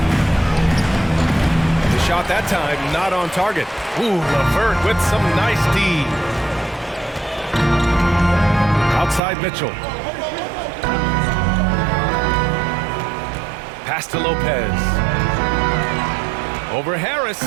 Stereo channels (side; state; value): left; drops out; at 9.2 s